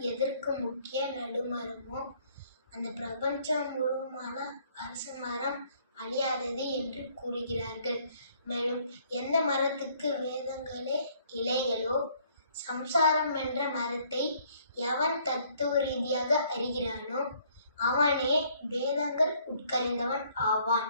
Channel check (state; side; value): inverted; both; correlation -0.63